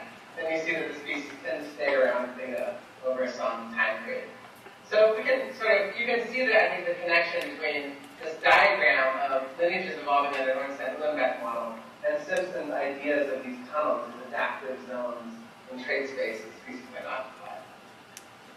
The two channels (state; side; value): identical; both; correlation 1.00